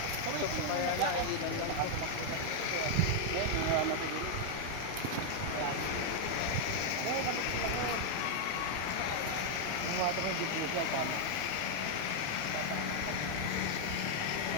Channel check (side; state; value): both; different; correlation 0.00